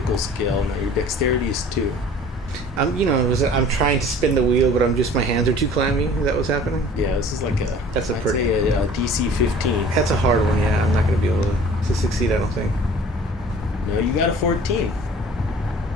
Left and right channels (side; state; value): both; normal; correlation 0.48